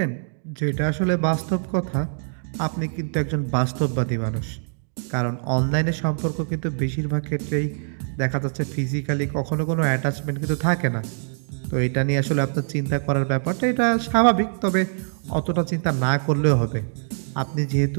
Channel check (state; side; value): silent; left; digital silence